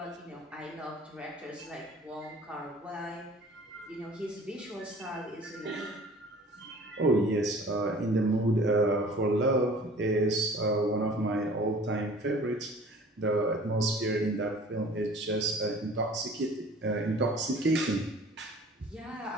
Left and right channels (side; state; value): both; normal; correlation 0.48